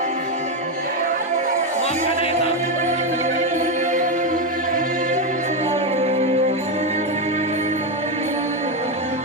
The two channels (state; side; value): normal; both; correlation 0.09